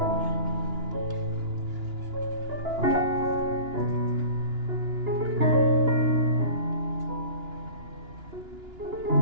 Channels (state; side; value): late; left; 2.9 ms